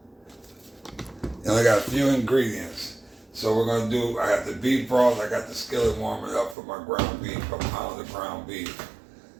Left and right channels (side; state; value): left; drops out; at 6.6 s